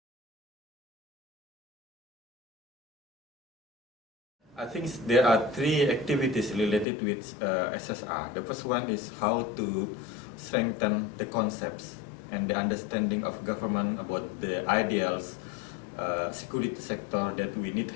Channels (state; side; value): drops out; right; at 6.9 s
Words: I think there are three activities related with SSR. The first one is how to strengthen the concepts and the understanding of government about the ideals security sector that we need to